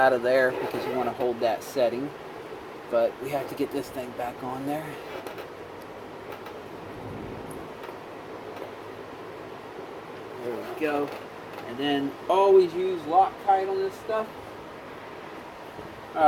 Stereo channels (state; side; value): identical; both; correlation 1.00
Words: of there because you want to hold that setting. But we have to get this thing back on there. There we go. And then always use Loctite on this stuff.